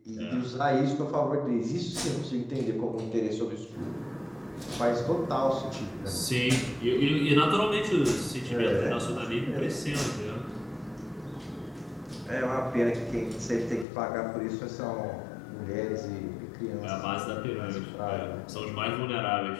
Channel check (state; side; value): drops out; right; at 13.9 s